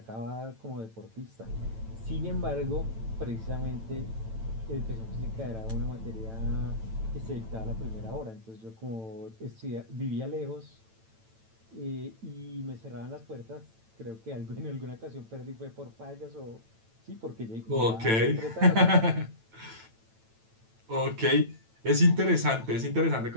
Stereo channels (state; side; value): late; left; 9.0 ms